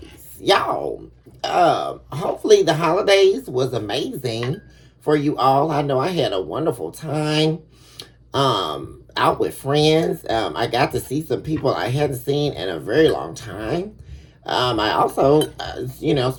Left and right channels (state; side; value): identical; both; correlation 1.00